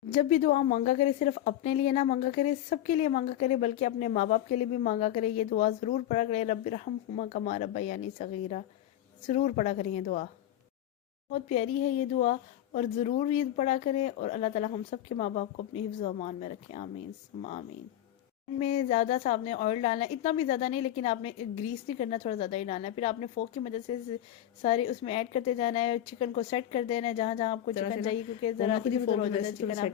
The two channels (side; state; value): right; quieter; 12.0 dB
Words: जब भी दुआ मांगा करे सिर्फ अपने लिए ना मांगा करे, सबके लिए मांगा करे, बल्कि अपने माँ बाप के लिए भी मांगा करे। ये दुआ ज़रूर पढ़ा करें, रब्बिरहम्हुमा कमा रब्बयानी सगीरा, ज़रूर पढ़ा करें ये दुआ, बहुत प्यारी है ये दुआ। और ज़रूर ये पढ़ा करें और अल्लाह ताला हम सब के माँ बाप को अपनी हिफ्ज़ व अमान में रखें, आमीन सुम्मा आमीन। में ज़्यादा सा आपने ऑयल डालना है, इतना भी ज़्यादा नहीं, लेकिन आपने ग्रीस नहीं करना, थोड़ा ज़्यादा ही डालना है। फिर आपने फोक की मदद से सारे उसमें ऐड करते जाना है। चिकन को सेट कर देना है जहाँ जहाँ आपको चिकन चाहिए, क्योंकि ज़रा इधर उधर हो जाता है चिकन,